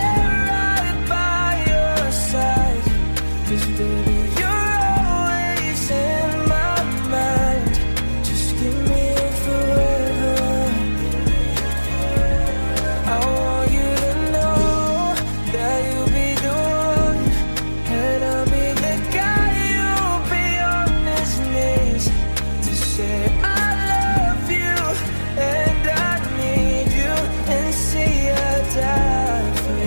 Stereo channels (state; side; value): inverted; both; correlation -1.00